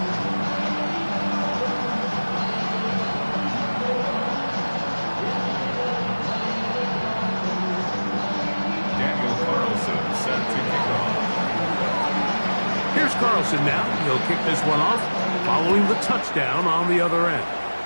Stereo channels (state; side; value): inverted; both; correlation -1.00